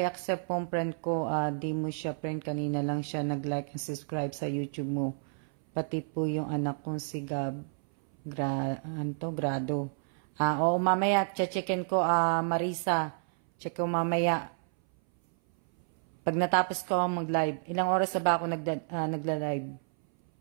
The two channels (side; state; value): left; silent; 58 dB below the other